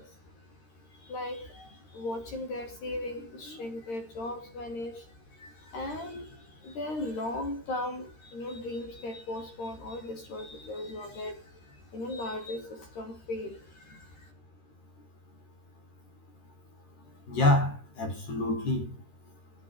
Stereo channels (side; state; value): right; late; 13 ms